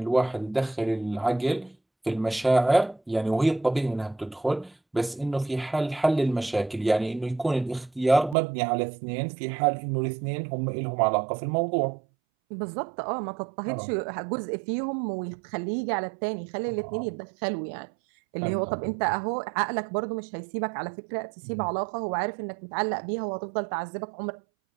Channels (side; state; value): left; drops out; at 8.3 s